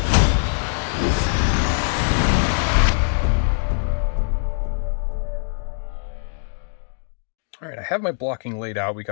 All right, I have my blocking laid out. We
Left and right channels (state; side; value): silent; right; digital silence